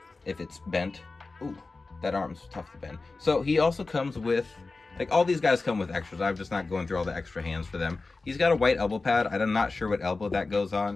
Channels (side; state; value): right; quieter; 3.7 dB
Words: bent. Ooh, that arm's tough to bend. So he also comes with, like, all these guys come with extras. I'm just not going through all the extra hands for them. He's got a white elbow pad. I'm not sure what elbow that goes